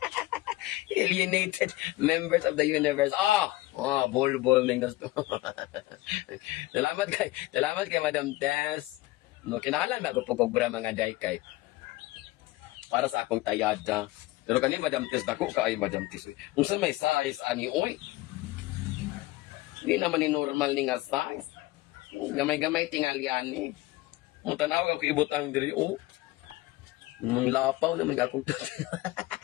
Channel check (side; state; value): right; quieter; 18.9 dB